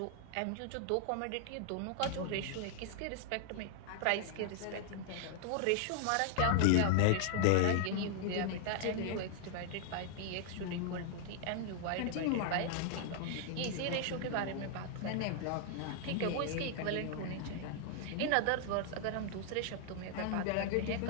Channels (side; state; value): both; different; correlation 0.00